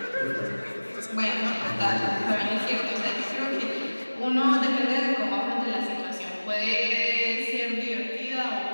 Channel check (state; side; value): inverted; both; correlation -1.00